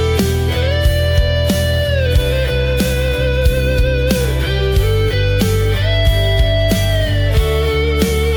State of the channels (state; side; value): identical; both; correlation 1.00